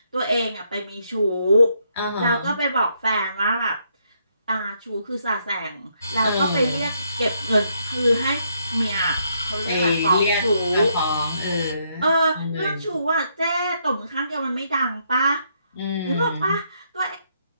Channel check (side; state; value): both; inverted; correlation -0.74